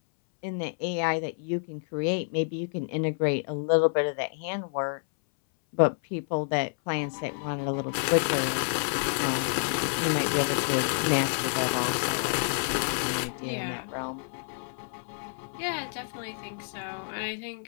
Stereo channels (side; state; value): right; silent; 59 dB below the other